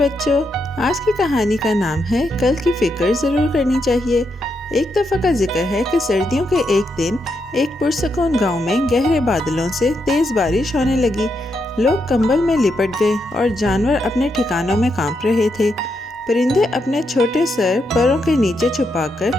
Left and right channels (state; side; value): normal; both; correlation 0.81